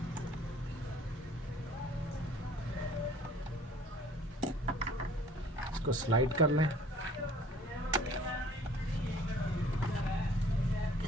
इसको स्लाइड कर लें।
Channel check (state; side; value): normal; both; correlation 0.54